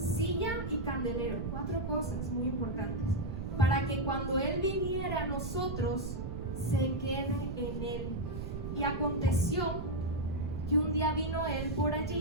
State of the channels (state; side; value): noise; right; rumble, 5 dB below the sound